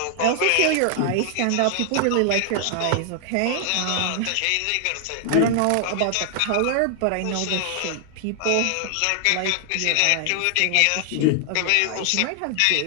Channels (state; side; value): different; both; correlation 0.00